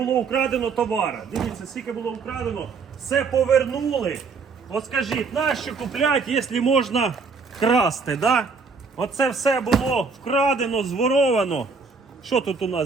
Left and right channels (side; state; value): left; quieter; 4.8 dB